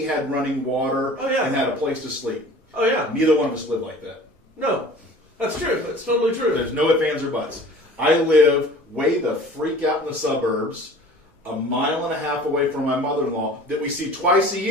had running water and had a place to sleep. Oh, yeah. Neither one of us live like that. No. That's true. That's totally true. There's no ifs, ands, or buts. I live way the freak out in the suburbs. a mile and a half away from my mother-in-law that we see twice a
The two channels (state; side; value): normal; both; correlation 0.45